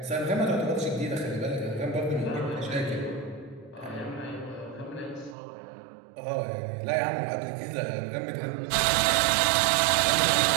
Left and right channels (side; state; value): left; drops out; at 5.4 s